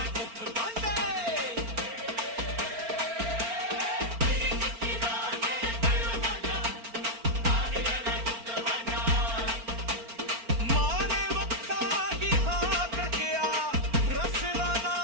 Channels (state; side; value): late; left; 4.4 ms